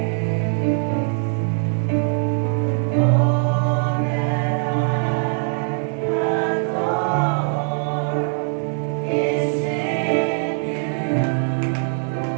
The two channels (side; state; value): left; silent; 56 dB below the other